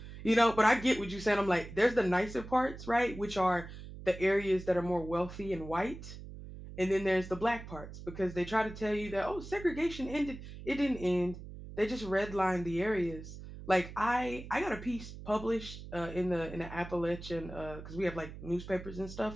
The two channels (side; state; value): right; noise; hum, 12 dB below the sound